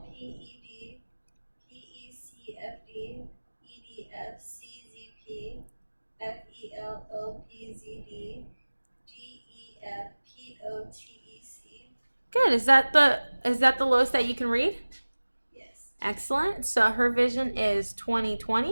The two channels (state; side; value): inverted; both; correlation -1.00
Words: P E D. P E C F D. E D F C Z P. F E L O P Z D. G E F P O T E C. Good. Is that the lowest that you can read? Yes. Excellent. So her vision is